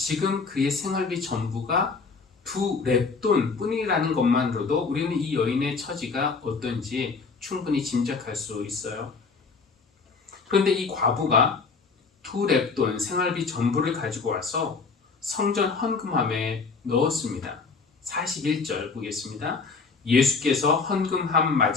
그의 생활비 전부가 2렙돈 뿐이라는 것만으로도 우리는 이 여인의 처지가 어떤지 충분히 짐작할 수 있어요. 그런데 이 과부가 2렙돈 생활비 전부를 가지고 와서 성전 헌금함에 넣었습니다. 41절 보겠습니다. 예수께서 헌금함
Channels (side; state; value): right; quieter; 4.7 dB